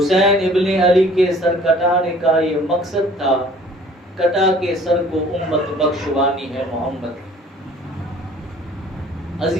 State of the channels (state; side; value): normal; both; correlation 0.53